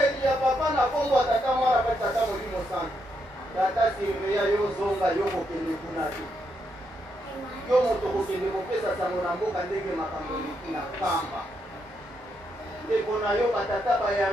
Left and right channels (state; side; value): normal; both; correlation 0.79